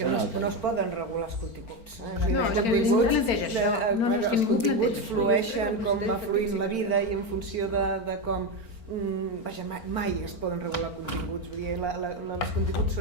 no es poden regular els continguts. No, és que ningú planteja això. Els continguts flueixen com va fluint la vida i en funció de com... Vaja, mai es poden regular continguts, vull dir, els continguts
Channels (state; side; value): late; right; 4.4 ms